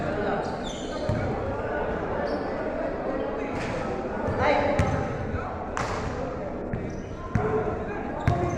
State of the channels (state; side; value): identical; both; correlation 1.00